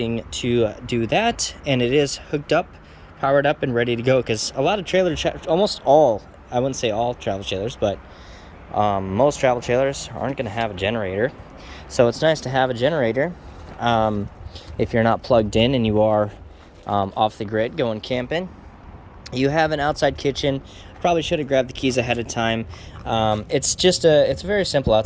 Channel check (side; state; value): both; identical; correlation 1.00